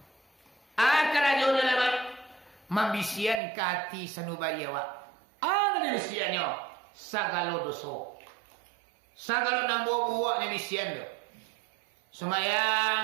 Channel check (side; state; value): left; drops out; at 3.4 s